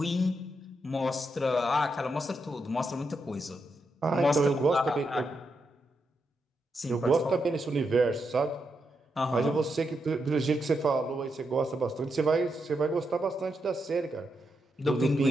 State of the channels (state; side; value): normal; both; correlation 0.83